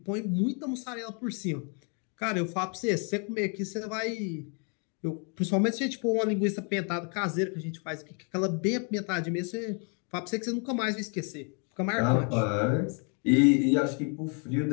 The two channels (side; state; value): right; quieter; 38.3 dB